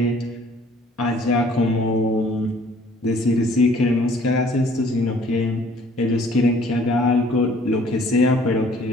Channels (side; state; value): both; normal; correlation 0.56